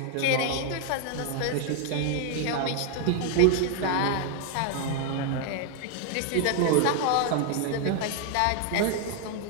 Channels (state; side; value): different; both; correlation 0.00